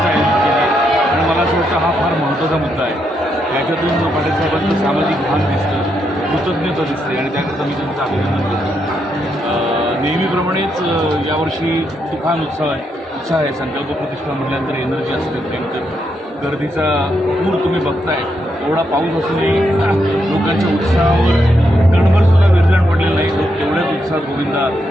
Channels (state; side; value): normal; both; correlation 0.80